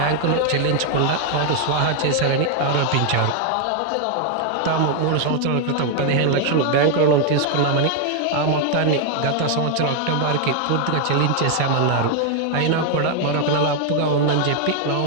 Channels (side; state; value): both; different; correlation 0.00